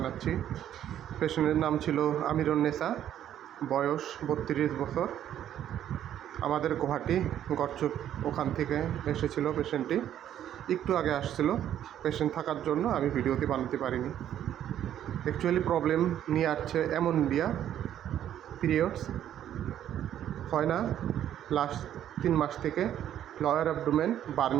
পেশেন্টের নাম ছিল আমিরুন্নেসা, বয়স 32 বছর। আমাদের গুয়াহাটি গড়চুক ওখান থেকে এসেছিল পেশেন্টটি। একটু আগে আসছিল। পেশেন্ট থাকার জন্য আমি ভিডিওটি বানাতে পারিনি। অ্যাকচুয়ালি প্রবলেম নিয়ে আসছে অ্যামোনিয়া, পিরিয়ডস হয় না লাস্ট 3 মাস থেকে, লোয়ার অ্যাবডোমেন,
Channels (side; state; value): left; quieter; 10.8 dB